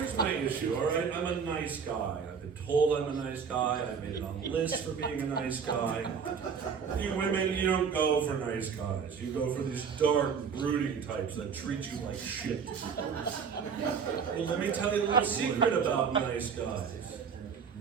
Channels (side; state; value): left; quieter; 6.4 dB